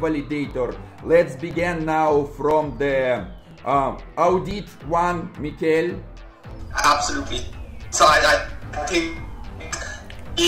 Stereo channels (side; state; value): both; identical; correlation 1.00